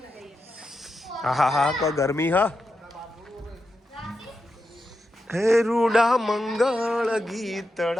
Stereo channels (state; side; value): normal; both; correlation 0.88